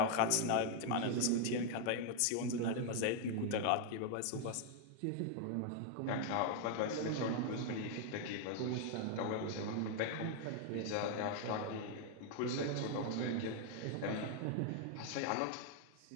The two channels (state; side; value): different; both; correlation 0.00